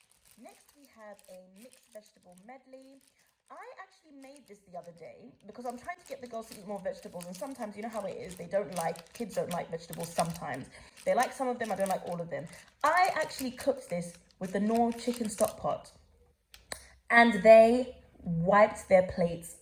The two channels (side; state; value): both; identical; correlation 1.00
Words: Next, we have a mixed vegetable medley. I actually made this the other day because I'm trying to get the girls to eat more vegetables, and sometimes, you know how it is, kids don't like vegetables sometimes. They like some of them, I don't like all of them. I actually cooked this with the Knorr chicken stock pot, and they wiped their plates